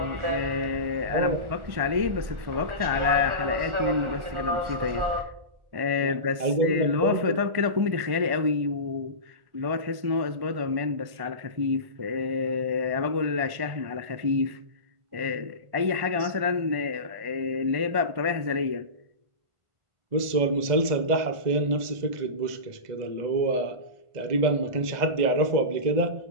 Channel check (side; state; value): left; late; 1.5 ms